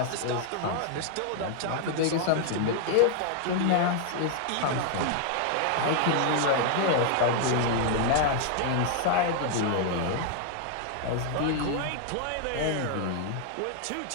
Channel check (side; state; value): both; different; correlation 0.00